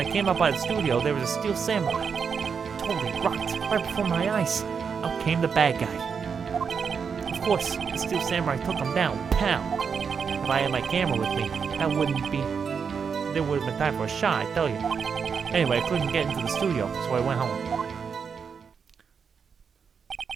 came up by the studio, there was a Steel Samurai. Totally rocked, right before my eyes. Out came the bad guy. Of course, the Steel Samurai took him down, pow! If I had my camera with me, there would have been time for a shot, I tell you. Anyway, I couldn't get into the studio, so I went home.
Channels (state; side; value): quieter; left; 6.2 dB